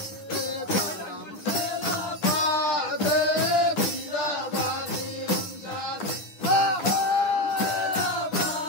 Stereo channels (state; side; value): late; right; 9.9 ms